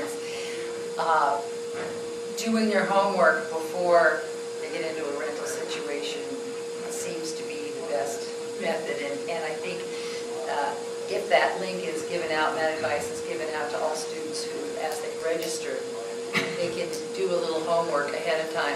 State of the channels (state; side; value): identical; both; correlation 1.00